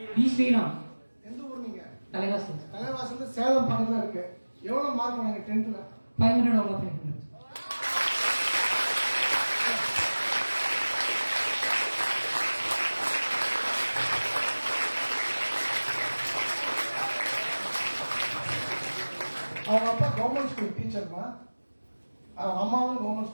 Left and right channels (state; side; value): inverted; both; correlation -1.00